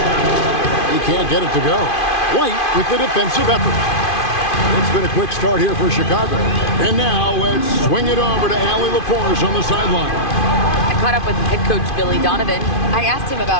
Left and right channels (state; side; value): late; right; 2.5 ms